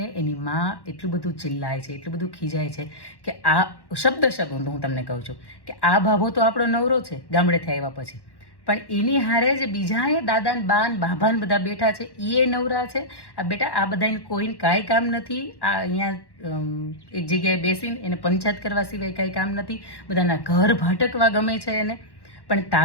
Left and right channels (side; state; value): right; late; 1.1 ms